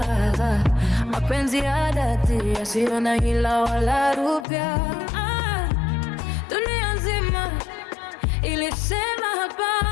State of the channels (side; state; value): right; drops out; at 4.5 s